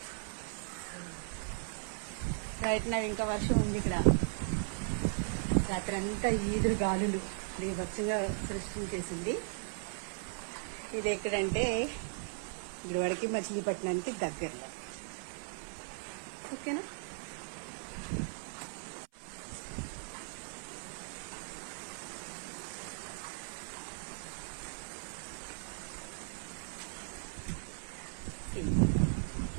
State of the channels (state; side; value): silent; left; 53 dB below the other